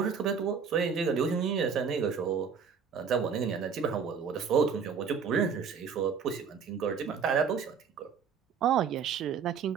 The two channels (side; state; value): left; quieter; 6.3 dB